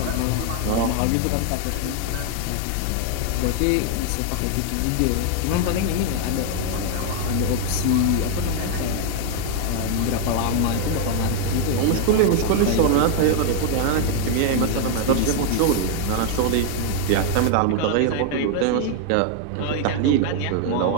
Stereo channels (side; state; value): both; different; correlation 0.00